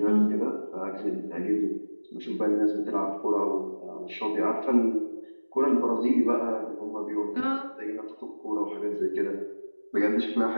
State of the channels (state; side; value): inverted; both; correlation -1.00